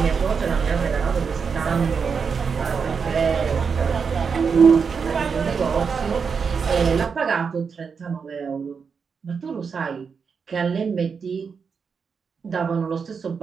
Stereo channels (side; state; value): left; quieter; 5.8 dB